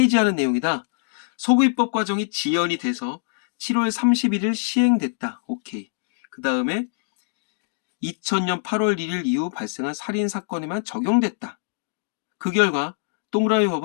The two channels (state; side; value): silent; right; digital silence